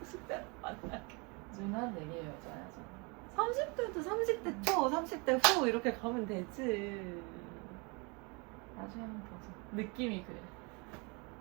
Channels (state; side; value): quieter; left; 30.2 dB